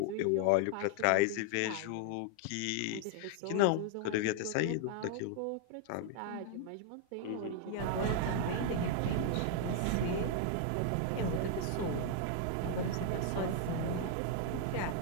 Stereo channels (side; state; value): both; different; correlation 0.00